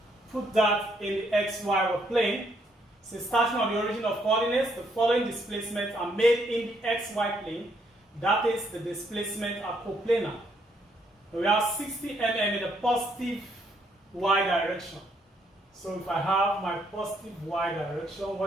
put that in the xy plane. So starting on the origin of coordinates, the following displacements are made in the xy plane. That is, the displacement are coplanar. We have 60 mm in the positive y direction. So if I have my positive y direction,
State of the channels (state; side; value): normal; both; correlation 0.72